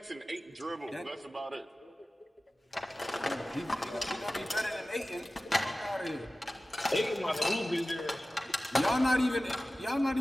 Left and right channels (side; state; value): both; normal; correlation 0.96